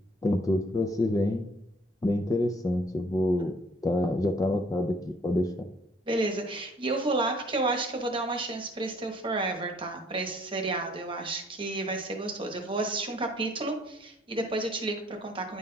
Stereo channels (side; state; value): both; normal; correlation 0.60